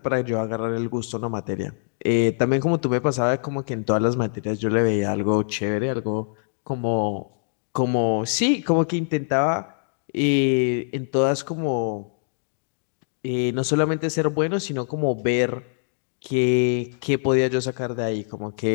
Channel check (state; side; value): silent; right; digital silence